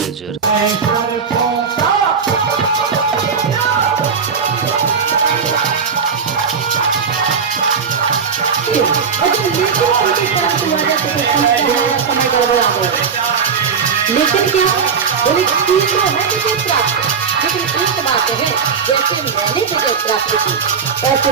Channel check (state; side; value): quieter; left; 6.1 dB